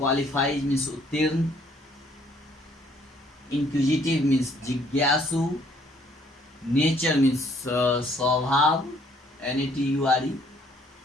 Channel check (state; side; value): normal; both; correlation 0.63